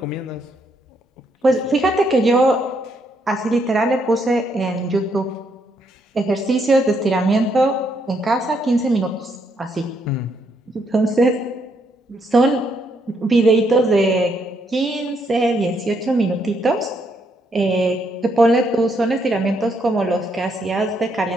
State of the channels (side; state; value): both; normal; correlation 0.75